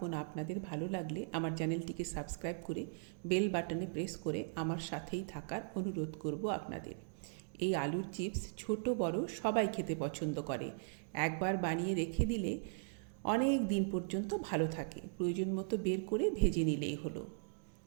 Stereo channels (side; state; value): left; silent; digital silence